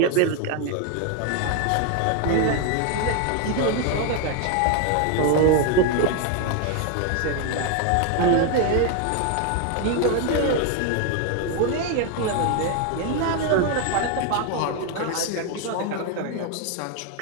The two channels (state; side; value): different; both; correlation 0.01